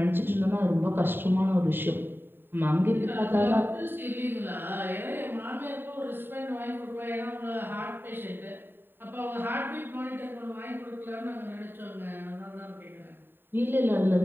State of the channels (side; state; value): left; late; 0.097 ms